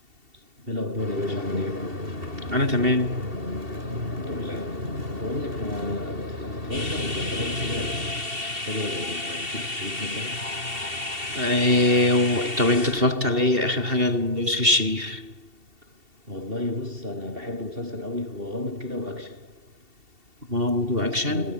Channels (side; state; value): left; late; 2.7 ms